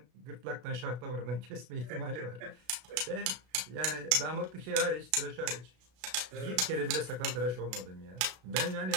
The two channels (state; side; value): late; left; 32 ms